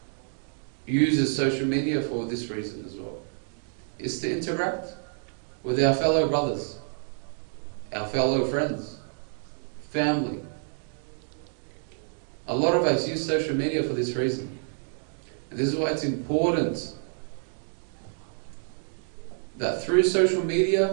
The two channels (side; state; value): left; silent; 59 dB below the other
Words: uses social media for this reason as well, is to interact with our fellow brothers, our fellow friends, family. A lot of us use social media for this reason. And this is why it's important that through social media